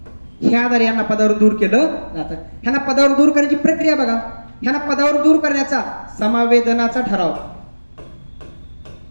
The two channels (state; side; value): inverted; both; correlation -1.00